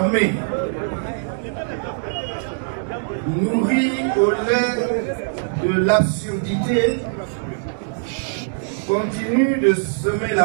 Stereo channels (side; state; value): left; silent; digital silence